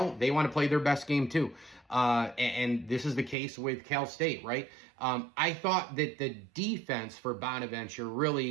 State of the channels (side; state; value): left; drops out; at 3.4 s